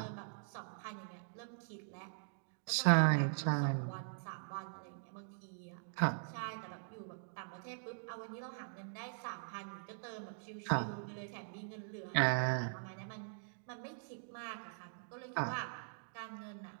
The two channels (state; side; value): silent; left; digital silence